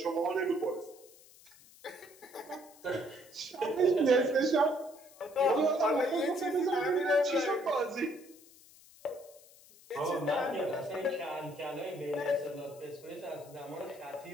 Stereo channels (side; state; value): left; noise; hiss, 24 dB below the sound